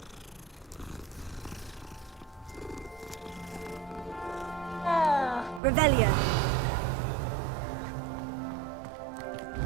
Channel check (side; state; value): left; drops out; at 5.6 s